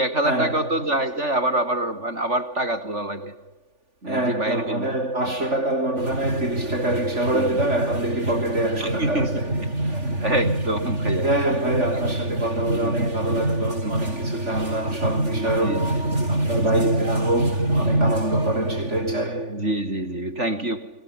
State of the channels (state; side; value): late; left; 3.4 ms